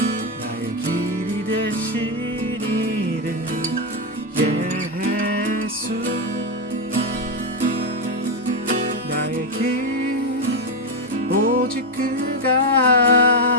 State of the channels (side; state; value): both; normal; correlation 0.06